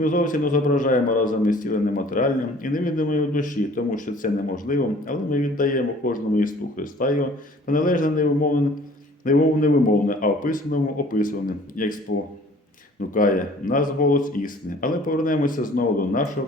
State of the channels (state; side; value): normal; both; correlation 0.51